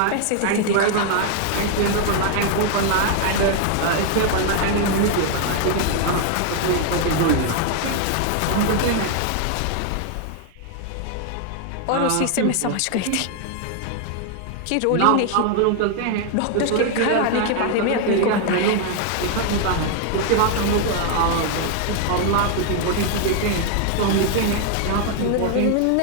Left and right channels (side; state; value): both; different; correlation 0.00